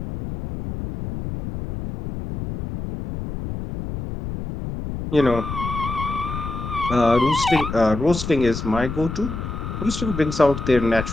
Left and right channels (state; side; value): noise; left; rumble, 6 dB below the sound